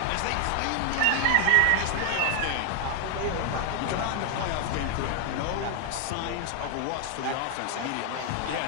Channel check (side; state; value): both; different; correlation 0.00